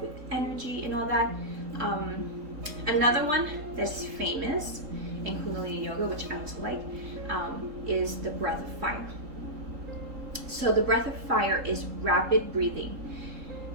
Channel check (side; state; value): left; late; 3.8 ms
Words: energy and all that. Another one that's famous in Kundalini yoga, which I also like, is the breath of fire. So the breath of fire is rapid breathing.